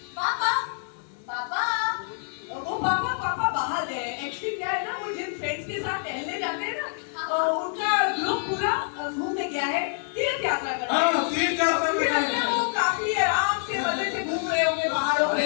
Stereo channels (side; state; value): right; silent; digital silence